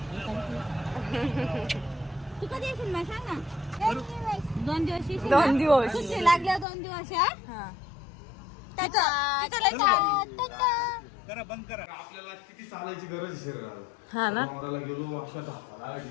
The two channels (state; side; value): drops out; right; at 6.7 s